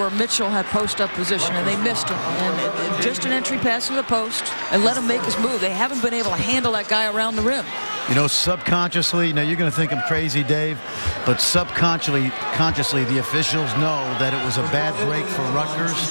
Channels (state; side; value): inverted; both; correlation -1.00